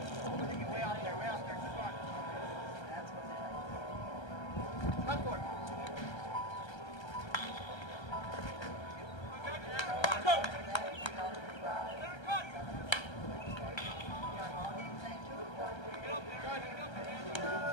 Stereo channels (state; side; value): late; right; 1.3 ms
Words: Way out there, keep on. That's what they like. Come for it.